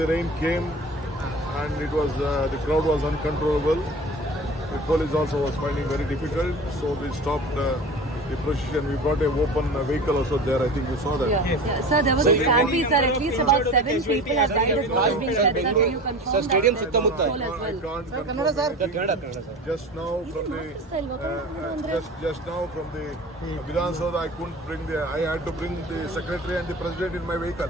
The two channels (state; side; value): normal; both; correlation 0.36